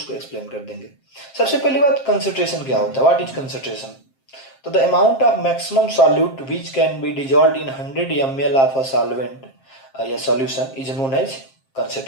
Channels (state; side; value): late; right; 7.5 ms